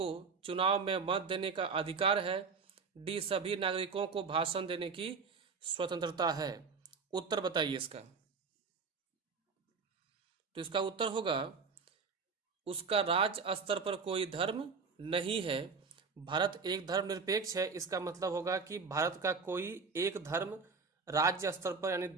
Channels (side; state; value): left; quieter; 5.0 dB